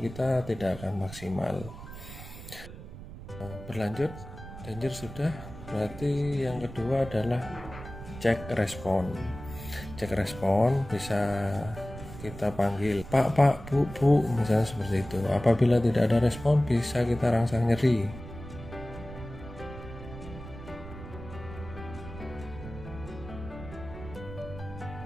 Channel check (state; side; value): noise; right; rumble, 13 dB below the sound